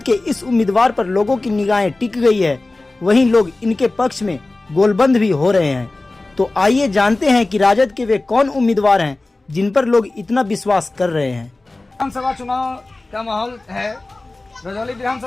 के इस उम्मीदवार पर लोगों की निगाहें टिक गई है, वहीं लोग इनके पक्ष में गोलबंद भी हो रहे हैं। तो आइए जानते हैं कि राजद के वे कौन उम्मीदवार हैं जिन पर लोग इतना विश्वास कर रहे हैं। विधानसभा चुनाव का माहौल है। रजौली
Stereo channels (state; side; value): quieter; right; 3.0 dB